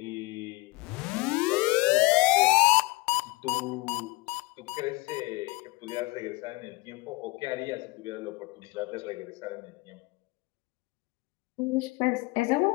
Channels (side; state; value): right; quieter; 23.8 dB